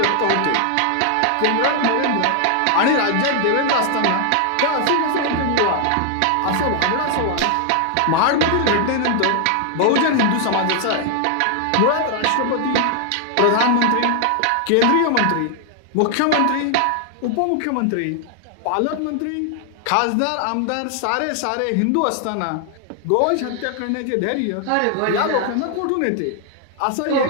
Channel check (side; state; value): both; different; correlation 0.00